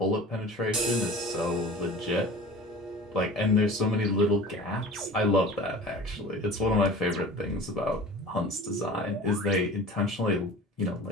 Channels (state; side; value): normal; both; correlation 0.40